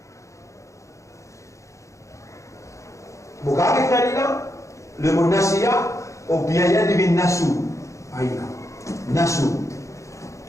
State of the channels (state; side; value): late; right; 0.15 ms